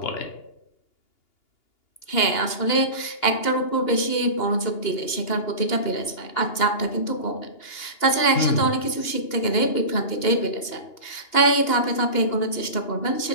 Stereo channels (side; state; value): right; late; 2.8 ms